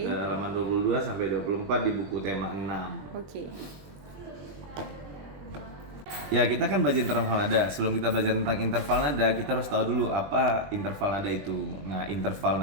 Halaman 22 sampai 24 di buku tema 6. Oke. Ya, kita kan belajar interval nada. Sebelum kita belajar tentang interval nada, kita harus tahu dulu apa interval nada itu. Nah, interval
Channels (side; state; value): left; late; 21 ms